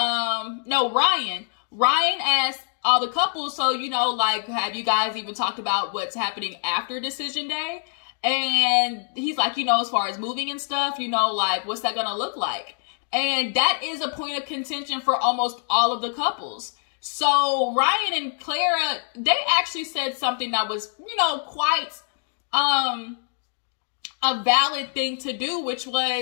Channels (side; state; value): right; silent; 58 dB below the other